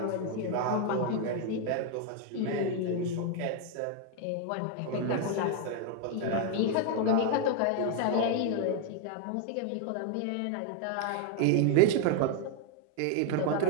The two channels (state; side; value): different; both; correlation 0.01